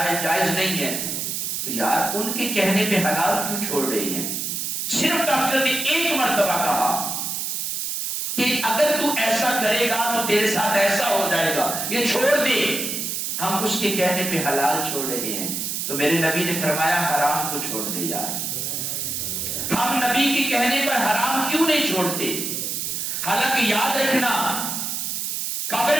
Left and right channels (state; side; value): noise; right; hiss, 2 dB below the sound